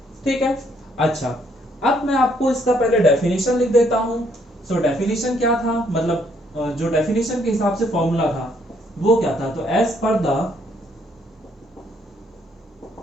ठीक है। अच्छा, अब मैं आपको इसका पहले डेफिनेशन लिख देता हूं। सो डेफिनेशन क्या था, मतलब जो डेफिनेशन के हिसाब से फॉर्मूला था वो क्या था, तो as per the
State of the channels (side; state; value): both; normal; correlation 0.69